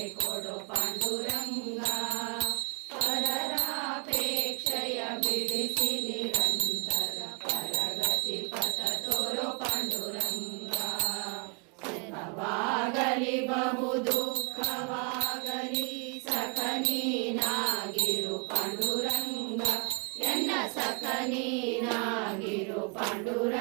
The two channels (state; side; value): quieter; left; 36.6 dB